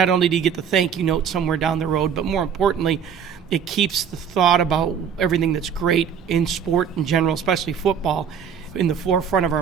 only do you get the thank you note somewhere down the road, but more importantly, it keeps the thought about everything that's great in sport in general, especially football, in the forefront of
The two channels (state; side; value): quieter; left; 7.6 dB